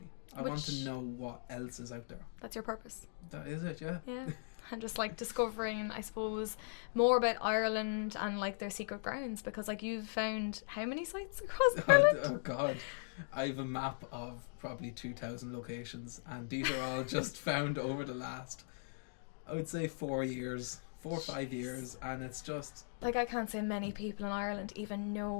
I want to know what else is out there. That's your purpose. That is it, yeah. Yeah. And just like discovering, I suppose, more about Ireland and like their secret grounds, because like you've found how many sites across Ireland? Oh god, I have a map of probably 2,000 locations, and these are all just found over the last, I would say 4 or 5 years, and it's just like, I can't say many people in Ireland even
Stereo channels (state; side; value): silent; right; digital silence